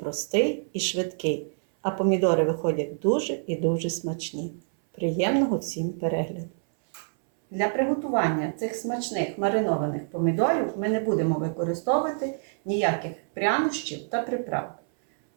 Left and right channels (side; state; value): left; silent; 59 dB below the other